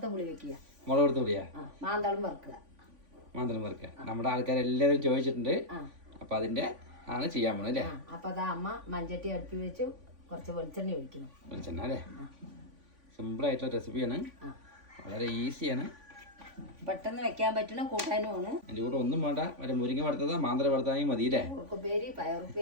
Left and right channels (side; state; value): left; late; 3.5 ms